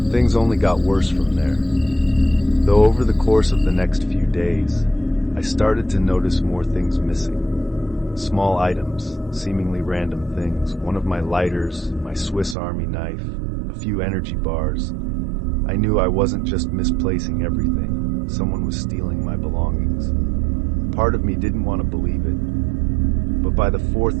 Things only got worse from there. Though over the course of the next few days, I started to notice more things missing. Small items, seemingly random things, one of my lighters, my Swiss Army knife, a few energy bars. I knew I wasn't just misplacing everything. Someone was stealing my belongings. Part of me didn't want to believe it. But by the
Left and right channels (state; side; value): drops out; left; at 12.6 s